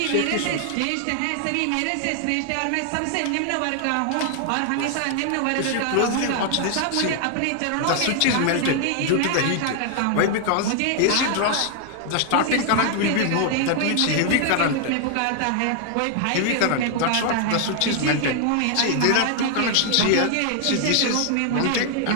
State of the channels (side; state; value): both; different; correlation 0.00